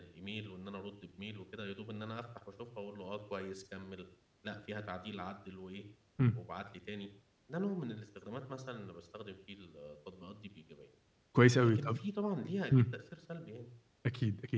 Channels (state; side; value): identical; both; correlation 1.00